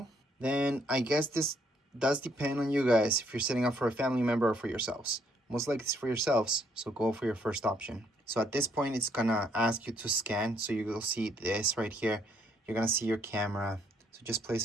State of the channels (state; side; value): normal; both; correlation 0.69